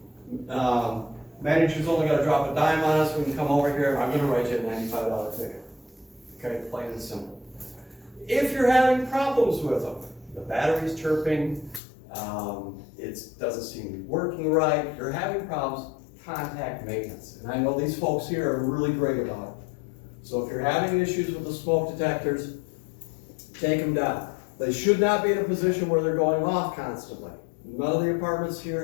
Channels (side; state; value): right; drops out; at 11.8 s